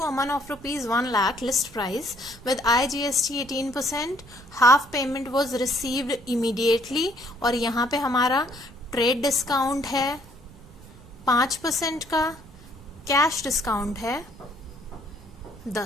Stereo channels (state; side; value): noise; right; rumble, 21 dB below the sound